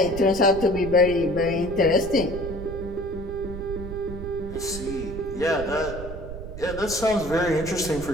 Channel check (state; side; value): noise; right; rumble, 10 dB below the sound